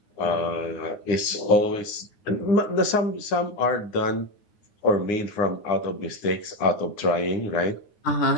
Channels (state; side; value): late; right; 9.6 ms